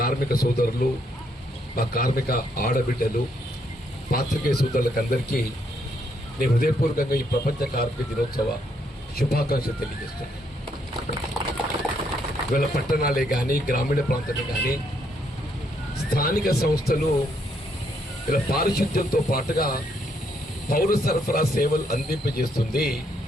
కార్మిక సోదరులు, మా కార్మిక ఆడబిడ్డలు, పాత్రికేయ సోదరులకు అందరికీ నేను హృదయపూర్వకంగా ఈ ప్రపంచ కార్మిక దినోత్సవ శుభాకాంక్షలు తెలియజేస్తున్నాను. ఇవాళ పట్టణాలే కానీ, గ్రామీణ ప్రాంతాలే కానీ, స్థానిక సంస్థలు ఇలా పారిశుద్ధ్యంతో పాటుగా పౌర సరఫరా సేవలు అందింపజేస్తుంది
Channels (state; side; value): normal; both; correlation 0.73